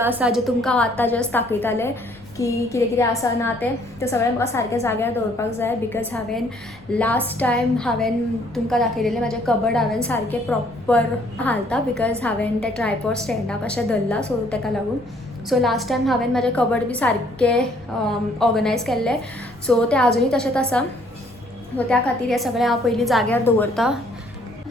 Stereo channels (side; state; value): left; noise; rumble, 27 dB below the sound